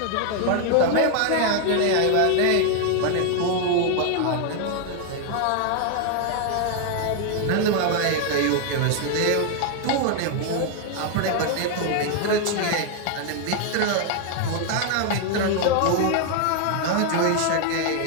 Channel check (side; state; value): both; different; correlation 0.00